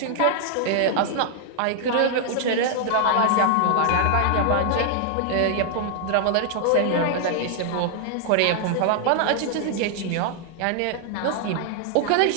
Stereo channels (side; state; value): both; different; correlation 0.00